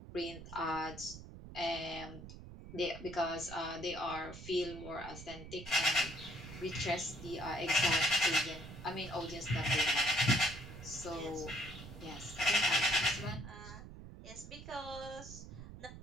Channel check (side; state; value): right; noise; rumble, 13 dB below the sound